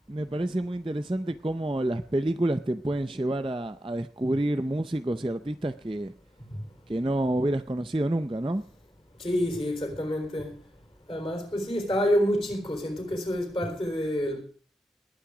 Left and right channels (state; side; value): normal; both; correlation 0.87